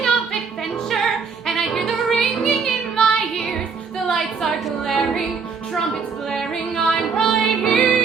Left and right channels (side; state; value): left; quieter; 5.4 dB